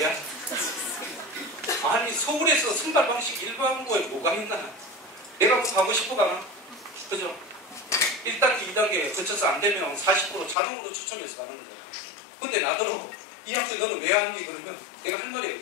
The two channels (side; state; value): right; drops out; at 10.6 s